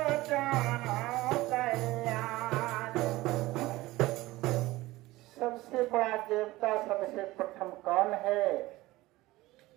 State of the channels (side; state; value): left; quieter; 18.7 dB